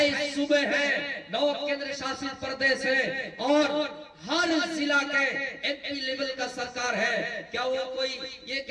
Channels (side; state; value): both; identical; correlation 1.00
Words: صوبے ہیں، 9 کیندر شاست پردیش ہیں اور ہر ضلع کے ایم پی لیول کا سرکار ہے. کیا وہ کوئی یہ